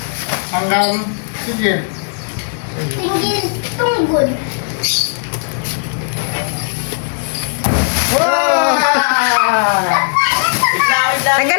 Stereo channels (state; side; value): silent; right; 69 dB below the other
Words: Hanggang... Sige. Tingin tunggod.